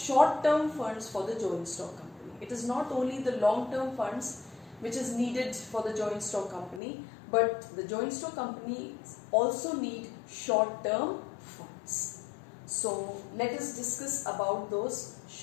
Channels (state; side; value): drops out; right; at 6.8 s